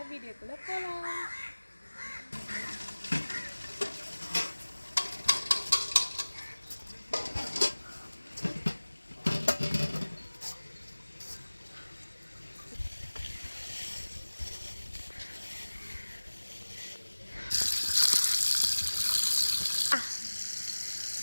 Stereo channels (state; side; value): inverted; both; correlation -1.00